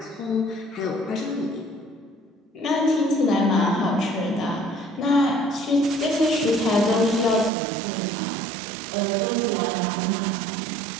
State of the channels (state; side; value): drops out; left; at 7.5 s